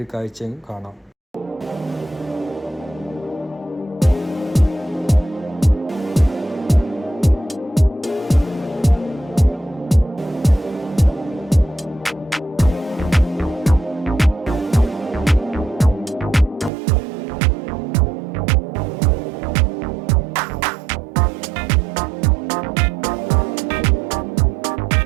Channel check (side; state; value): left; drops out; at 16.7 s